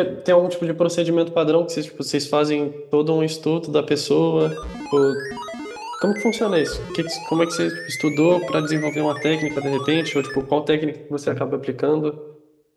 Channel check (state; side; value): identical; both; correlation 1.00